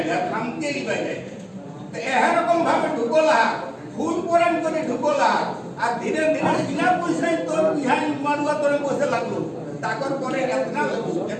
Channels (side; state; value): both; identical; correlation 1.00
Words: যায় হামকেই বাইরাই এরকম ভাবে ঢুকলা ফুল পরান করে ঢুকলা আর ধীরে ধীরে বিনা পয়সায় তোর বিহান মারুয়া তোরে বসে লাগলো তাকর পরে এতনা